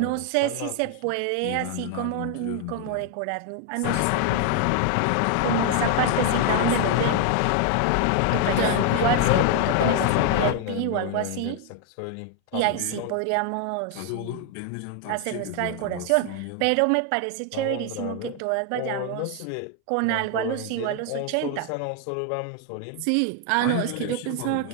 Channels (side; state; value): both; different; correlation 0.00